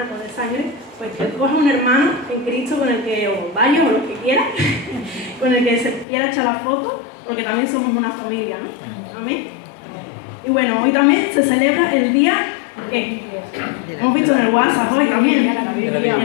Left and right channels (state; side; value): drops out; right; at 6.1 s